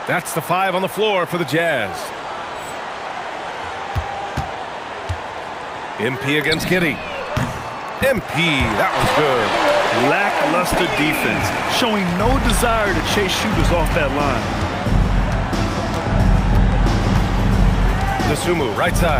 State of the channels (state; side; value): identical; both; correlation 1.00